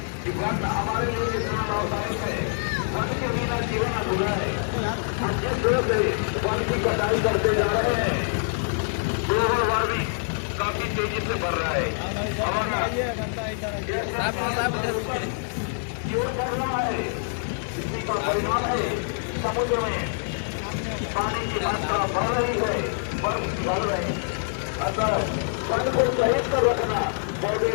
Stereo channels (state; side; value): silent; right; 61 dB below the other